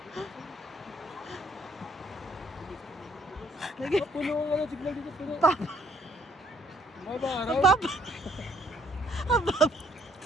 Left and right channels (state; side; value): normal; both; correlation 0.64